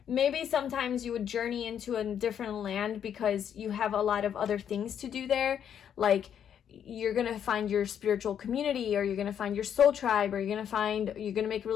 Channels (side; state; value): right; quieter; 8.9 dB